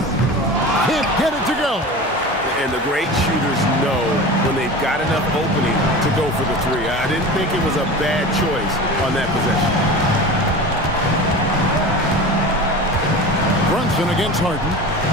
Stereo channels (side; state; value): both; normal; correlation 0.32